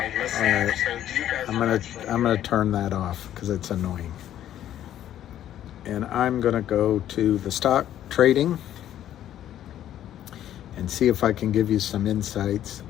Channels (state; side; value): quieter; right; 11.6 dB